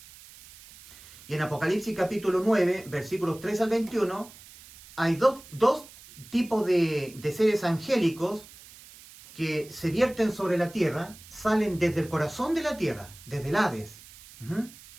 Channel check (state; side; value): noise; right; hiss, 20 dB below the sound